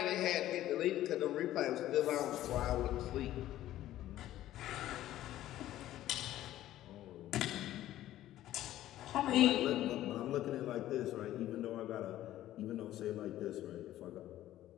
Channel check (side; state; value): right; quieter; 13.7 dB